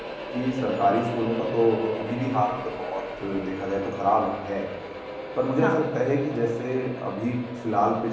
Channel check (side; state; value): both; identical; correlation 1.00